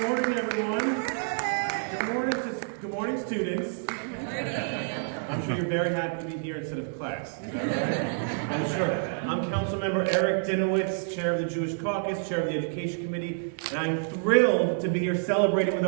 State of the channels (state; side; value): silent; left; digital silence